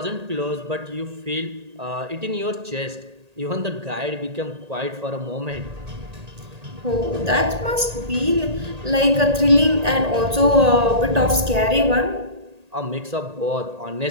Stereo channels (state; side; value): late; left; 1.8 ms